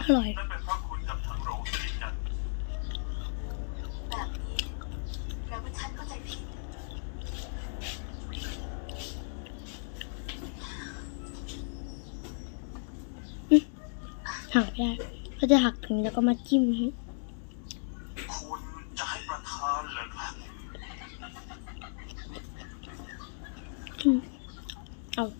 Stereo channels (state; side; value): silent; right; digital silence